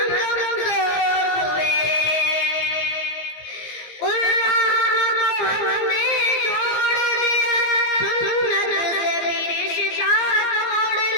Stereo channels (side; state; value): right; late; 17 ms